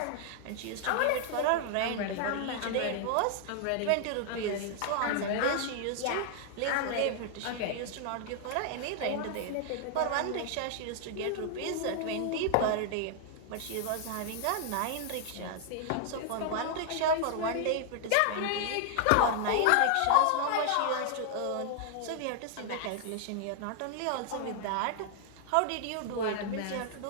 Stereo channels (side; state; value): both; different; correlation 0.00